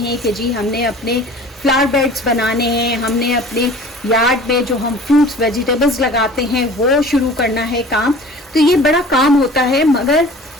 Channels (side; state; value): both; normal; correlation 0.44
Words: कि जी हमने अपने फ्लावर बेड्स बनाने हैं, हमने अपने यार्ड में जो हम फ्रूट्स वेजिटेबल्स लगाते हैं वो शुरू करना है काम। तो ये बड़ा काम होता है। मगर